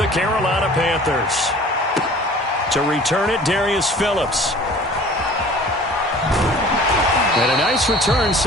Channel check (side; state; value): both; normal; correlation 0.47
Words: Carolina Panthers. To return it, Darius Phillips. And a nice return